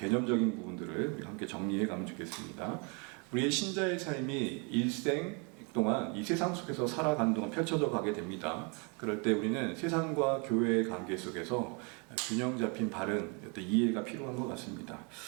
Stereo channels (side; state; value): left; quieter; 33.9 dB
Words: 부분들을 우리 함께 정리해 가면 좋겠습니다. 우리의 신자의 삶이 일생 동안 이 세상 속에서 살아가는 동안 펼쳐져 가게 됩니다. 그럴 때 우리는 세상과 교회의 관계 속에서 균형 잡힌 바른 이해가 필요한 것 같습니다.